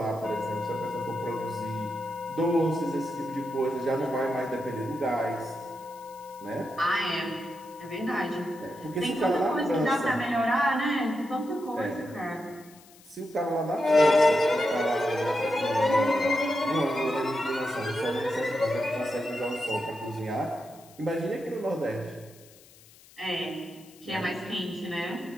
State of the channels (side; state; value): left; noise; hiss, 24 dB below the sound